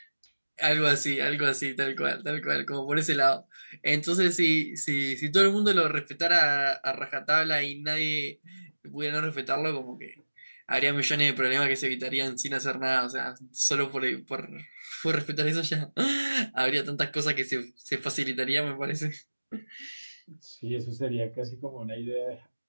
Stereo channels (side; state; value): both; inverted; correlation -1.00